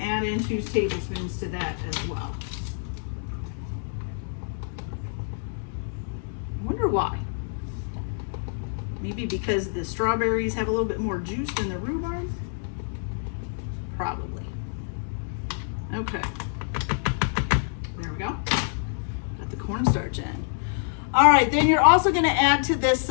add in 2 tablespoons to that as well. I wonder why. Maybe because the strawberries have a little bit more juice than the rhubarb? Probably. Okay. There we go. Got the cornstarch in. All right, then you're also going to add to this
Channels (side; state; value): right; silent; digital silence